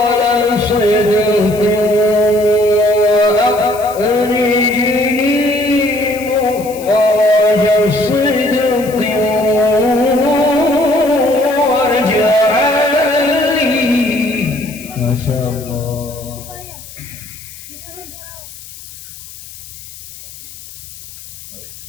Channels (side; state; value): left; noise; hiss, 16 dB below the sound